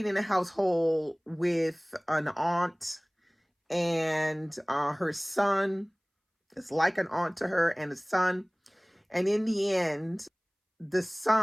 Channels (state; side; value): identical; both; correlation 1.00